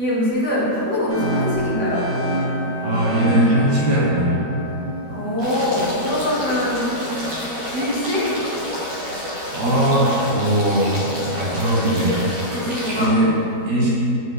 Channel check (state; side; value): late; left; 13 ms